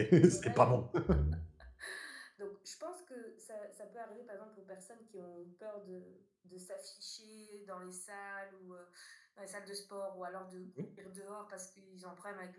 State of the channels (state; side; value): identical; both; correlation 1.00